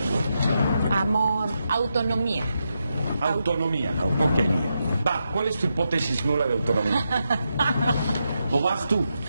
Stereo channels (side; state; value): both; inverted; correlation -0.85